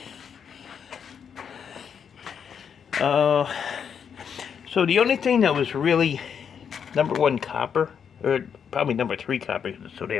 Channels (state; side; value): quieter; right; 7.4 dB